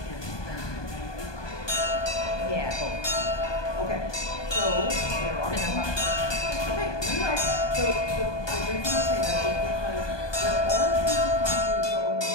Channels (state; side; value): late; right; 1.2 ms